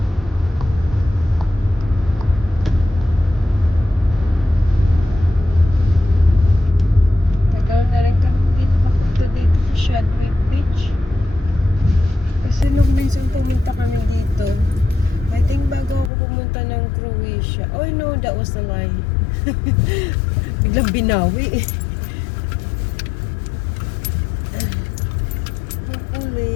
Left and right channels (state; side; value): drops out; right; at 16.1 s